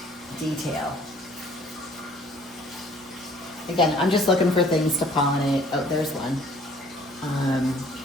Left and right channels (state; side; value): normal; both; correlation 0.56